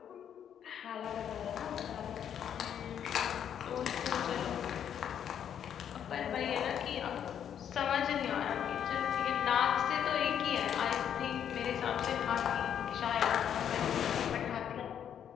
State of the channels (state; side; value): quieter; right; 9.1 dB